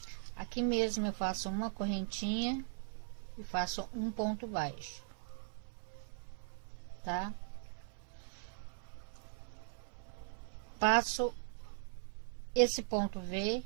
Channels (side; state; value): left; silent; 52 dB below the other